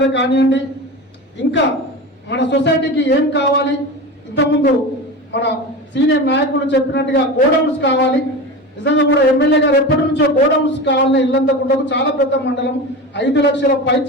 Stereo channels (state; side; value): normal; both; correlation 0.27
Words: కానివ్వండి, ఇంకా మన సొసైటీకి ఏం కావాలి, ఇంతకుముందు మన సీనియర్ నాయకులు చెప్పినట్టుగా గోడౌన్స్ కావాలి. నిజంగా కూడా ఎమ్మెల్యే గారు ఎప్పటి నుంచో గోడౌన్స్ కావాలని ఇల్లంతకుంటకు చాలా పెద్ద మండలం, 5 లక్షల